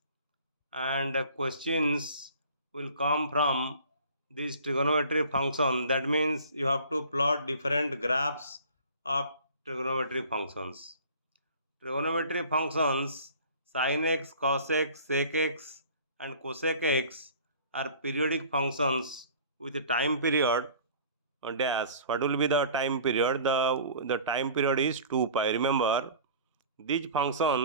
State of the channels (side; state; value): both; inverted; correlation -0.46